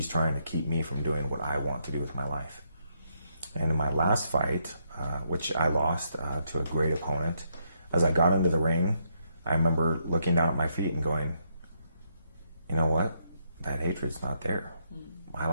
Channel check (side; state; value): both; inverted; correlation -0.77